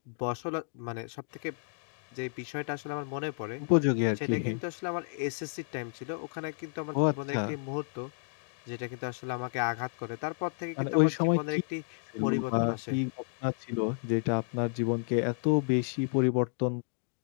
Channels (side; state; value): right; silent; digital silence